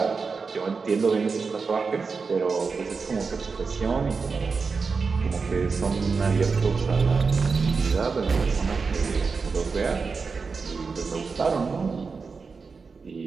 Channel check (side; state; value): left; quieter; 4.8 dB